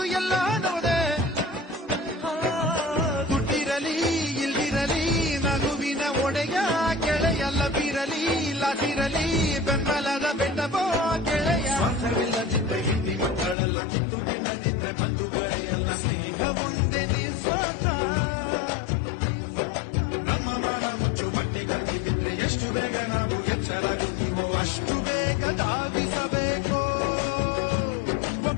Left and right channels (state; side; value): drops out; right; at 13.6 s